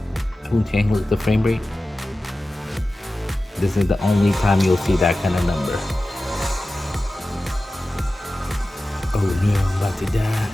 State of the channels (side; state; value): both; normal; correlation 0.95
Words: Who handles the frame rate? This is the only time you'll see that kind of number. Oh no, I'm about to die.